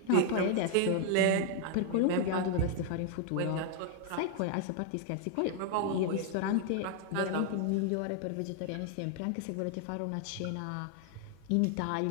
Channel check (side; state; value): both; different; correlation 0.00